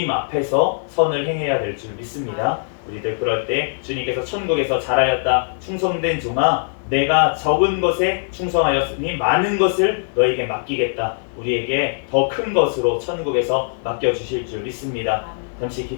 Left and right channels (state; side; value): silent; right; digital silence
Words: 앞에서 선을 행해야 될 줄 믿습니다. 우리들 그럴 때 주님께서 천국에서 잘하였다 충성된 종아 내가 적은 것에 충성하였으니 많은 것을 너에게 맡기겠다. 우리에게 더 큰 것으로 천국에서 맡겨주실 줄 믿습니다. 잠시